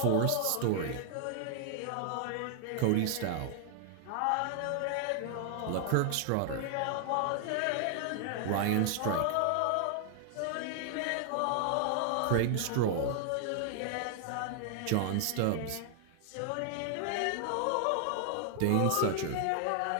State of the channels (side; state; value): both; different; correlation 0.00